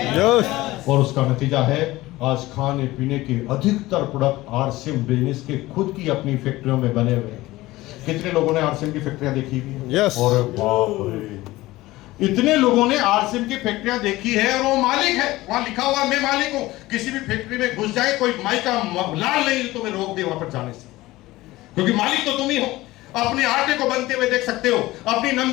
और उसका नतीजा है आज खाने पीने के अधिकतर प्रोडक्ट आरसीएम बिजनेस के खुद की अपनी फैक्ट्रियों में बने हुए हैं। कितने लोगों ने आरसीएम की फैक्ट्रियां देखी हुई है? यस और बाप रे, इतने लोगों ने आरसीएम की फैक्ट्रियां देखी है और वो मालिक है, वहां लिखा हुआ मैं मालिक हूं। किसी भी फैक्ट्री में घुस जाए, कोई माई का लाल नहीं तो मैं रोक दे वहां पर जाने से, क्योंकि मालिक तो तुम ही हो। अपने आटे को बनते हुए देख सकते हो, अपनी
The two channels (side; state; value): right; quieter; 18.3 dB